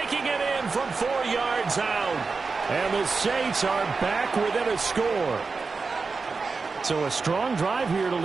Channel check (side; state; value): left; quieter; 4.4 dB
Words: it in from 4 yards out. And the Saints are back within a score. So a strong drive here to